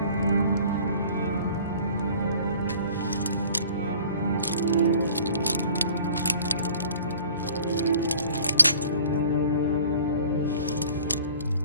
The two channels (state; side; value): inverted; both; correlation -0.49